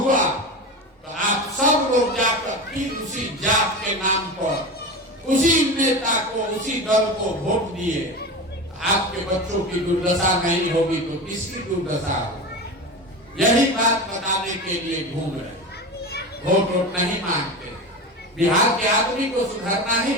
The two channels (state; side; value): normal; both; correlation 0.26